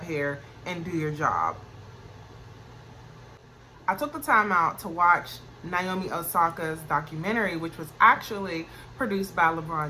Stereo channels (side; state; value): both; identical; correlation 1.00